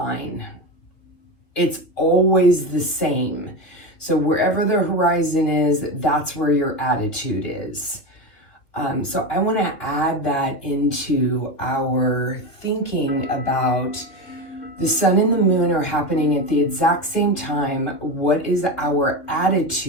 It's always the same. So wherever the horizon is, that's where your attitude is. So I want to add that into our thinking about the sun and the moon are happening at the exact same time. What is our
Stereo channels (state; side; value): late; right; 3.0 ms